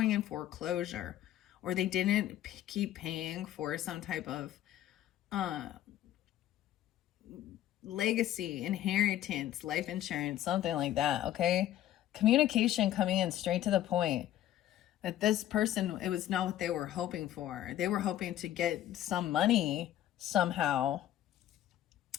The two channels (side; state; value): right; quieter; 12.7 dB